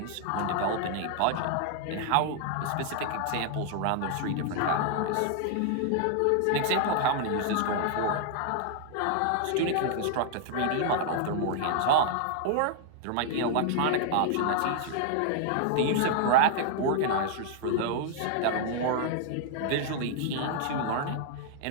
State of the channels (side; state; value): both; different; correlation 0.00